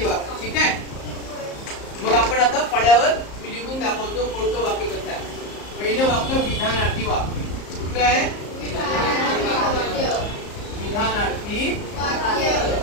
वाक्य. ठीक आहे. मग आपण आता फळ्यावर मी लिहून दाखवतो कोणतं वाक्य कसं आहे. पहिलं वाक्य विधानार्थी वाक्य. कुठलं आहे? विधानार्थी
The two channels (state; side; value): late; right; 34 ms